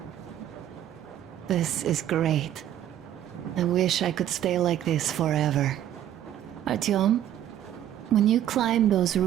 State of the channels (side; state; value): left; quieter; 11.4 dB